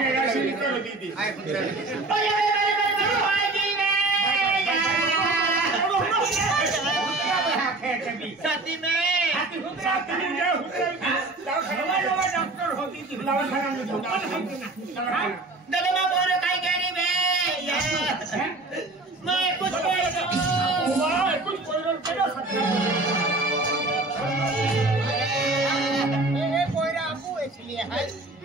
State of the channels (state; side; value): quieter; left; 3.0 dB